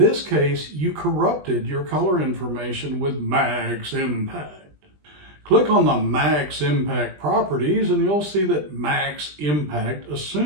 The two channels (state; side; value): late; left; 20 ms